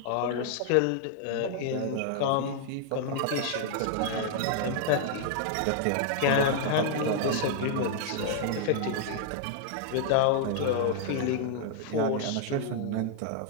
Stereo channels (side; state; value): both; different; correlation 0.00